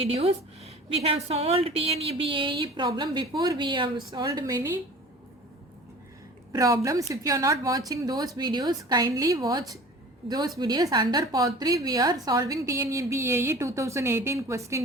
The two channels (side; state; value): both; normal; correlation 0.42